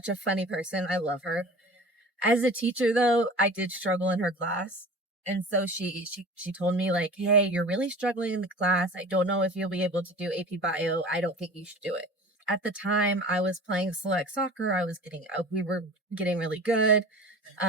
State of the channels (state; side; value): normal; both; correlation 0.39